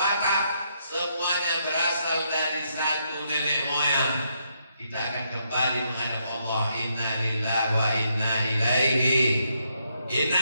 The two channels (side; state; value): both; inverted; correlation -0.76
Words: semuanya berasal dari satu nenek moyang. Kita akan kembali menghadap Allah. Inna lillahi wa inna ilaihi. Inna